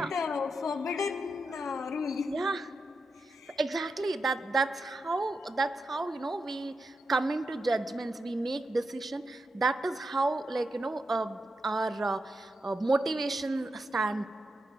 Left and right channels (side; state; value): both; normal; correlation 0.87